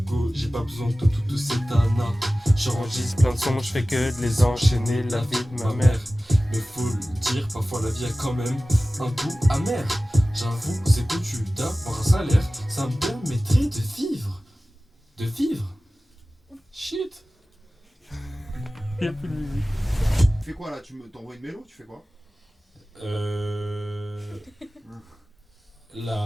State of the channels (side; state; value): both; normal; correlation 0.96